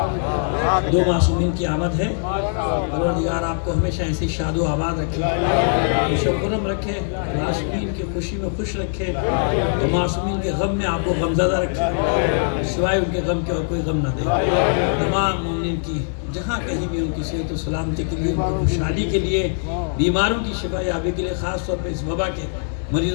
دو معصومین کی آمد ہے. پروردگار آپ کو ہمیشہ ایسی شاد و آباد رکھے, خوش و خرم رکھے, معصومین کی خوشی میں خوش رکھے, تو معصومین کے غم میں آپ کو غمزدہ رکھے, سوائے ان کے غم کے اور کوئی غم نہ دے. تمام مومنین کی جہاں کہیں بھی ان کی صحت و سلامتی کے لیے, ان کی خوشحالی کے لیے, بیماروں کی شفا یابی کے لیے, خاص طور پہ اس وبا کے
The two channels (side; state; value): right; silent; digital silence